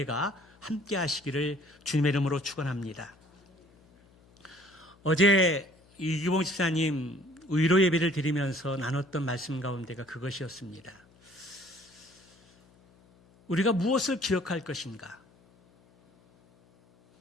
함께 하시기를 주님의 이름으로 축원합니다. 어제 이기봉 집사님 의로 예배를 드리면서 나눴던 말씀 가운데가 그것이었습니다. 우리가 무엇을 기억할 것인가?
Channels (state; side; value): noise; left; hum, 30 dB below the sound